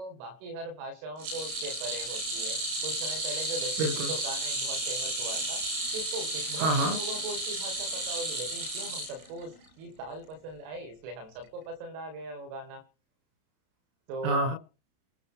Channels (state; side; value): late; left; 32 ms